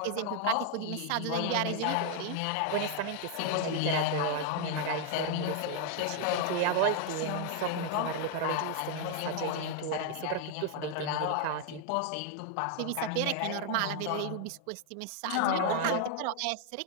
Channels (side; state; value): both; different; correlation 0.00